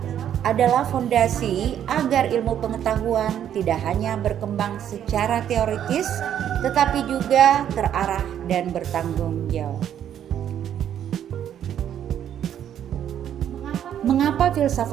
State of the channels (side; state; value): left; quieter; 10.0 dB